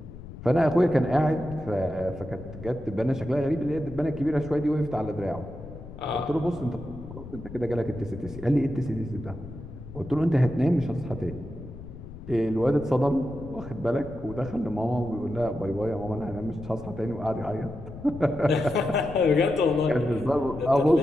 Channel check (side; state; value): left; noise; rumble, 14 dB below the sound